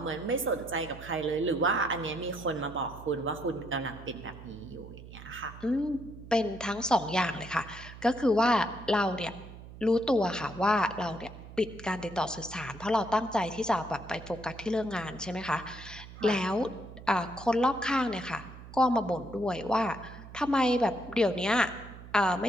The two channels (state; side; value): noise; right; hum, 15 dB below the sound